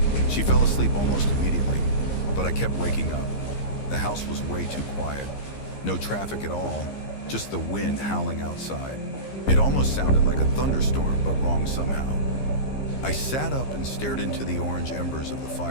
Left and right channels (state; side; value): late; right; 15 ms